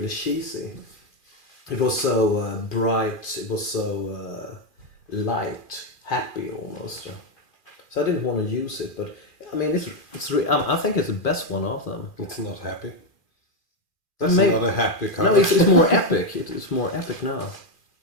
cheesy. It was so bright, it was so light, happy almost. So I didn't want to use it, but I mean, I think it's the best one of them. It's not happy. That's Maybe, not a happy cover. no, it's more epic. It's more epic now.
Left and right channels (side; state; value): right; late; 2.4 ms